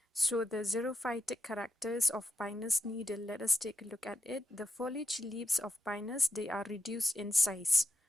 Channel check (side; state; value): both; normal; correlation 0.84